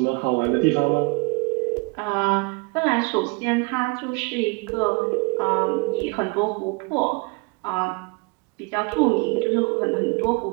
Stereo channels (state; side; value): quieter; left; 28.8 dB